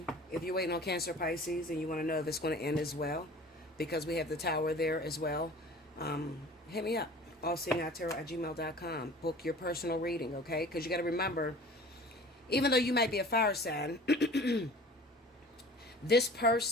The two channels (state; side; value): normal; both; correlation 0.44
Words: If you're waiting on Cancer, Pisces, and you want to know if it's going to end as well, because we have the Tower there as well, hit me up, allseeingeyetarot@gmail.com. Book your personal reading, okay? Because you got to remember, even though you might be a fire sign, this